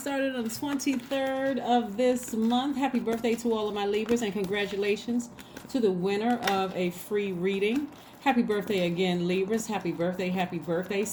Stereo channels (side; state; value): both; identical; correlation 1.00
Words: the 23rd of this month. Happy birthday to all of my Libras, and congratulations to the winner of a free reading. Happy birthday again, Libras. Happy birthday, happy birthday.